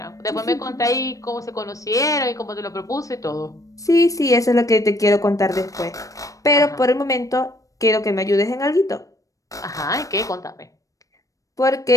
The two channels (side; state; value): right; late; 0.16 ms